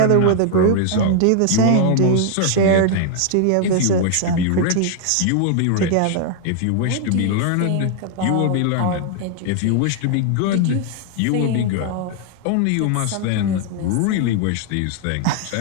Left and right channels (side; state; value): both; different; correlation 0.00